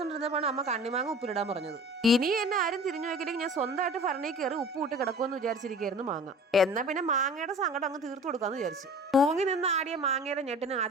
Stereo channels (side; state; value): both; normal; correlation 0.42